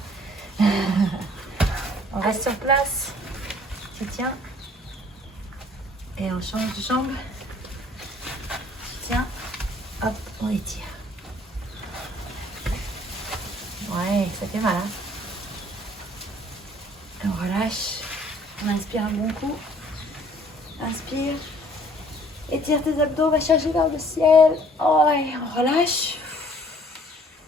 On reste sur place. Tu tiens. Et on change de jambe. Tu tiens. Hop, on étire. Ouais, ça fait mal. Hein? Et on relâche. On inspire un bon coup. Inspire. Étire tes abdos, va chercher vers le ciel. Oh, et on relâche.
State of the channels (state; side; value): normal; both; correlation 0.57